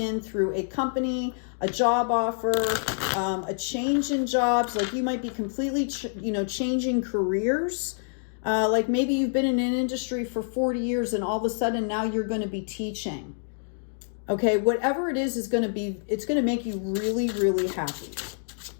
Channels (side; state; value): right; silent; digital silence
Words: through a company, a job offer, a change in jobs. Like you might be completely, changing careers. Like maybe you've been in an industry for 40 years and all of a sudden now you're going to be teaching. Okay, whatever it is going to be, it's going to make you really, really happy.